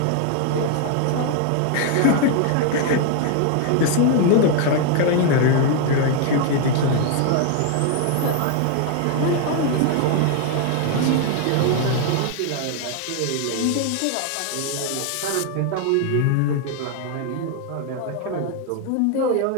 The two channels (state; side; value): different; both; correlation 0.00